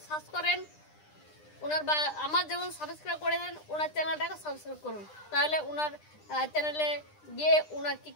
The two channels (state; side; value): late; right; 9.9 ms